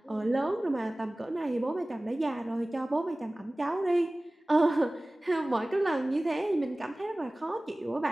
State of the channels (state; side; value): normal; both; correlation 0.98